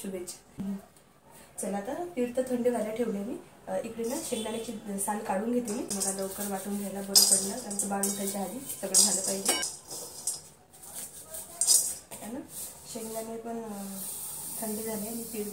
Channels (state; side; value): identical; both; correlation 1.00